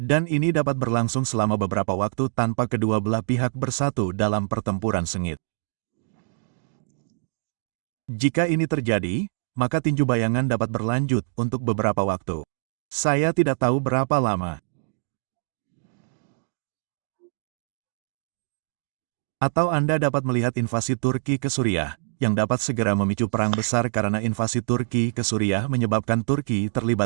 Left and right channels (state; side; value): silent; left; digital silence